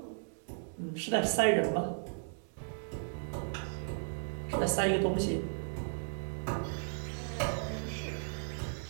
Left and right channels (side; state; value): left; silent; digital silence